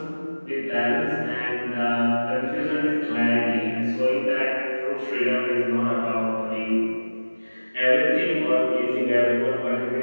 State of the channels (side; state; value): both; inverted; correlation -1.00